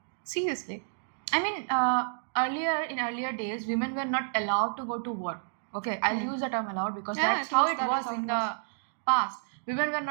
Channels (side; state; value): left; silent; digital silence